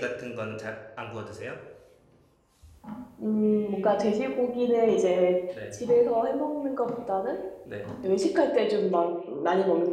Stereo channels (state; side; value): identical; both; correlation 1.00